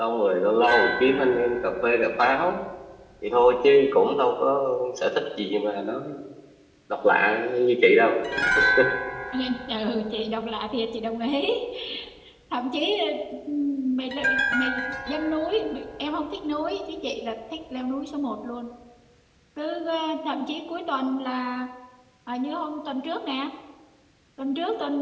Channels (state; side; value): identical; both; correlation 1.00